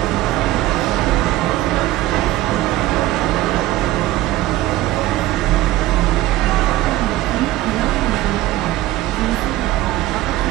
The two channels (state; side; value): quieter; left; 15.8 dB